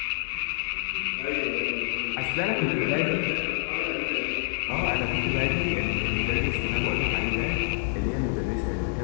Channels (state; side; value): silent; right; 60 dB below the other